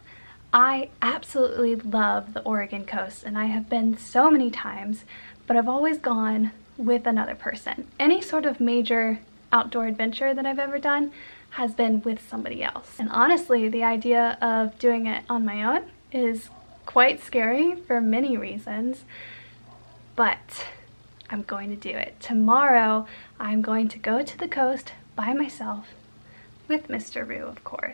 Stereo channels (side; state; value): both; inverted; correlation -1.00